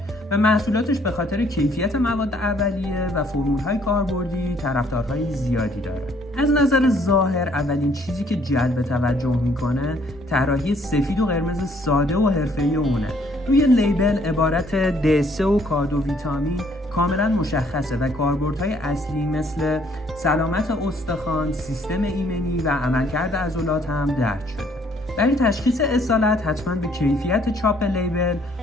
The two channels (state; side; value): normal; both; correlation 0.64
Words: و محصولاتش به خاطر کیفیت مواد اولیه و فرمول‌های کاربردی طرفدارهای زیادی داره. از نظر ظاهر اولین چیزی که جلب توجه میکنه طراحی سفید و قرمز ساده و حرفه‌ای اونه. روی لیبل عبارت دسه و کادو ویتامین کاملا مشخصه و کاربردهای اصلی مثل سلامت استخوان، سیستم ایمنی و عملکرد عضلات هم درج شده. برای تشخیص اصالت حتما به کیفیت چاپ لیبل،